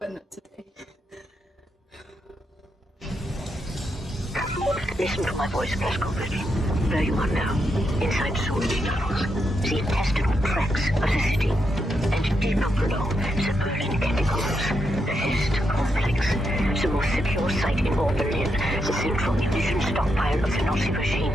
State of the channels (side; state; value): both; normal; correlation 0.82